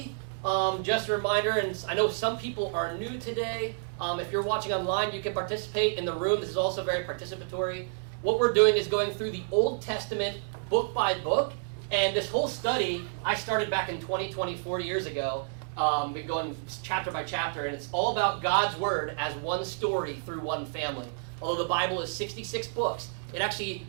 Just a reminder, and I know some people are new today. If you're watching online, you can participate in the room. This is also very participatory. What we're doing is going through the Old Testament book by book. And this whole study, I started back in 2020, 4 years ago. Been going chapter by chapter, and it's all about God's Word as one story through one family. Although the Bible is 66 books, the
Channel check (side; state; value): left; silent; digital silence